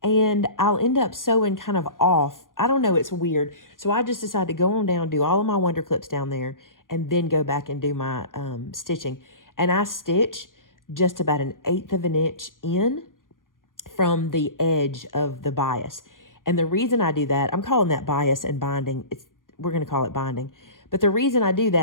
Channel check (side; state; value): right; late; 0.90 ms